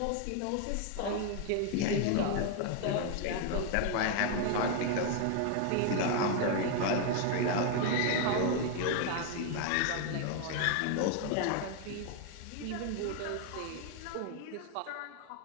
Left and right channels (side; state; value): both; different; correlation 0.00